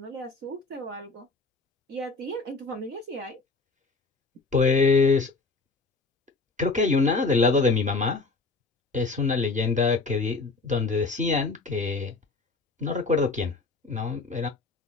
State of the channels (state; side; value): quieter; right; 3.9 dB